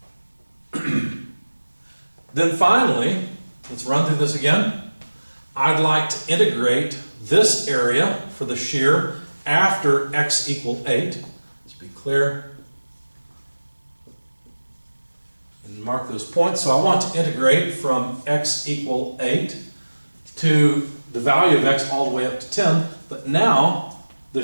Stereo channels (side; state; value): both; inverted; correlation -1.00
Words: Then finally, let's run through this again. I'd like to integrate this area for the shear after x equal 8. Let's be clear. And mark those points. So I want to integrate from x equal 8 to the value of x all the way up to 10. But now